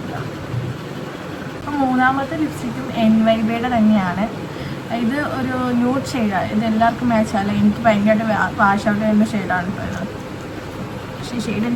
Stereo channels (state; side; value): identical; both; correlation 1.00